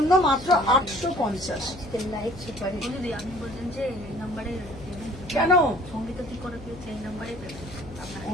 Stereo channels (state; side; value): noise; left; hum, 16 dB below the sound